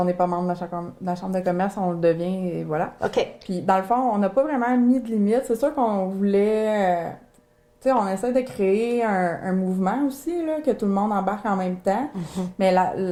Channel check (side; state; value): both; identical; correlation 1.00